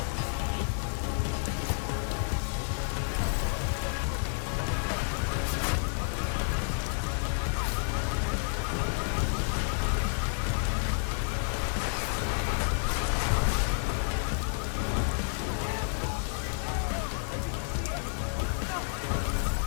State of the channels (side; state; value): right; silent; 58 dB below the other